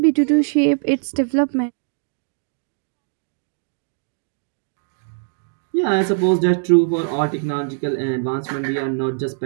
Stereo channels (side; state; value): left; silent; digital silence